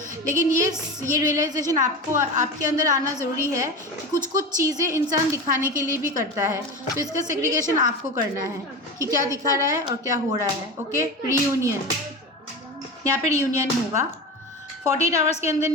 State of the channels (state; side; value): normal; both; correlation 0.26